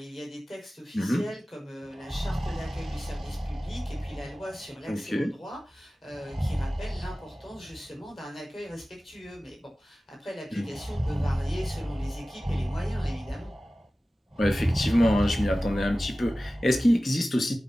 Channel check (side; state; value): both; normal; correlation 0.96